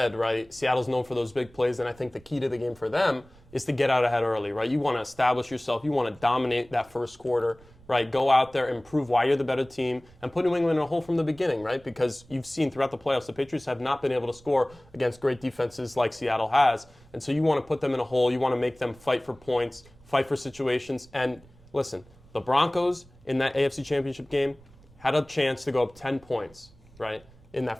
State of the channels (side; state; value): right; noise; rumble, 26 dB below the sound